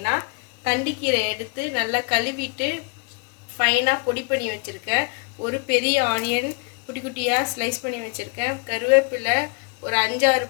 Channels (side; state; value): right; quieter; 33.1 dB